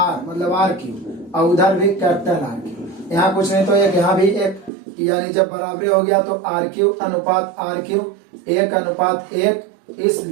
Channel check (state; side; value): drops out; left; at 4.7 s